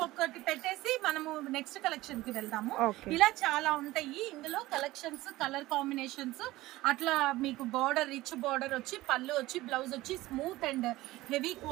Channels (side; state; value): left; quieter; 17.9 dB